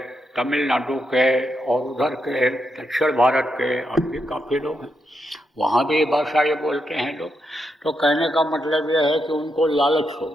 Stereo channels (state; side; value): normal; both; correlation 0.83